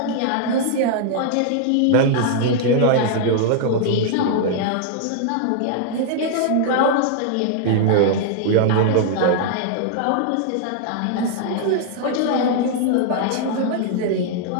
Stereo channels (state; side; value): different; both; correlation -0.01